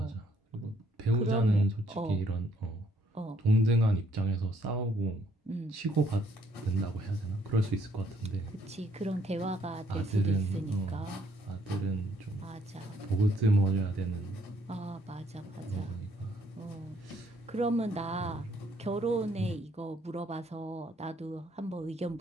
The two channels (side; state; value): both; normal; correlation 0.67